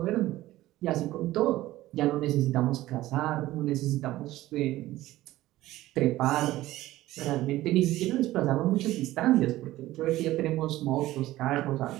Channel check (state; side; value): quieter; left; 16.1 dB